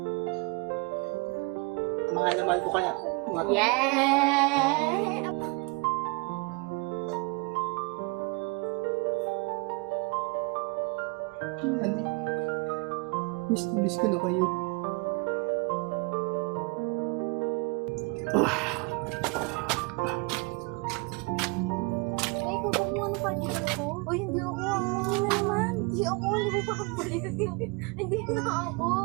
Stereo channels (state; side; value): quieter; left; 29.6 dB